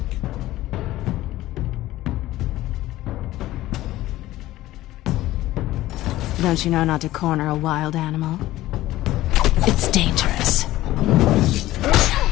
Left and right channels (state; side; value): quieter; right; 15.9 dB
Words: Don't you know not to corner a wild animal? It's dangerous.